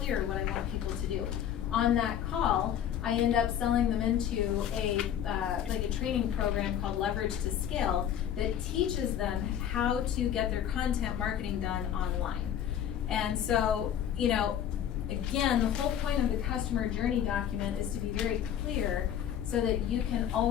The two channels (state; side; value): quieter; right; 9.9 dB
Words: what I want people to do. on that call, I end up selling them into like a training program called Leverage to Scale that teaches them how to get their content marketing done online. And so, you know, again, the whole point of the customer journey document is to be very clear so that you can